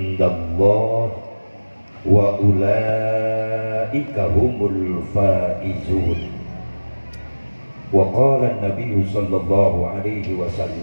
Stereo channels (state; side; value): inverted; both; correlation -1.00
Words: wa ulaika humul faizun. Wa qala an-nabiy sallallahu alaihi